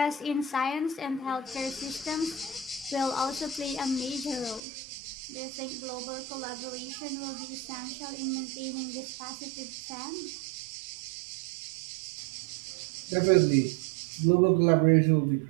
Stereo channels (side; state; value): left; drops out; at 4.6 s